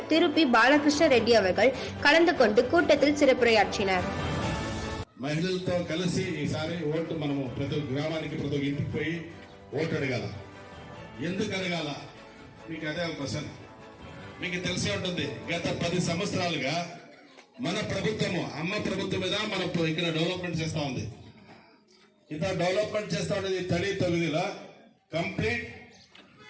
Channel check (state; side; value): identical; both; correlation 1.00